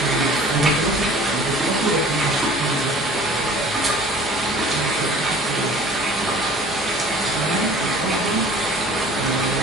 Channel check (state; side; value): normal; both; correlation 0.47